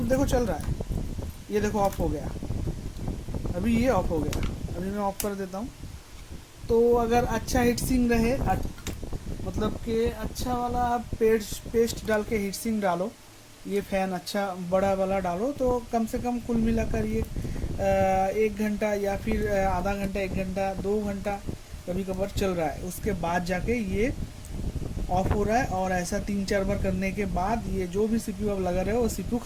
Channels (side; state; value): both; identical; correlation 1.00